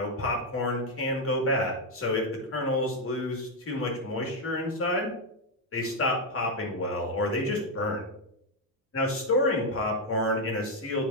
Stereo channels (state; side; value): normal; both; correlation 0.03